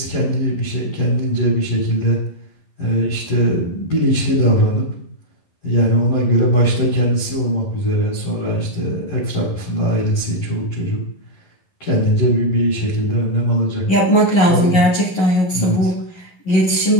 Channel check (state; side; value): late; right; 11 ms